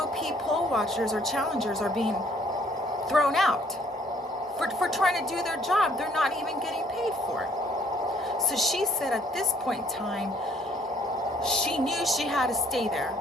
poll watchers or challengers are being thrown out for trying to do their job, they're not even getting paid for it. So she said at this point in time, she knew she had to stay there,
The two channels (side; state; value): both; normal; correlation 0.61